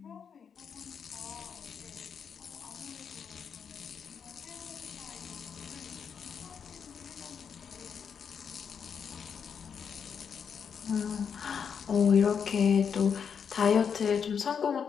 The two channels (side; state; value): right; quieter; 6.9 dB